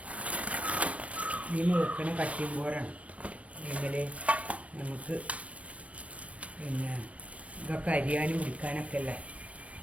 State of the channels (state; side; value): late; left; 0.064 ms